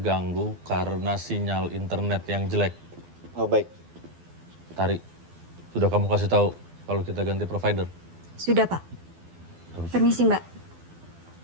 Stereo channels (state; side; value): late; left; 12 ms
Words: karena sinyal internet yang jelek. Oh, baik. Tari, sudah kamu kasih tahu kalau kita ganti provider? Sudah Pak. Permisi Mbak.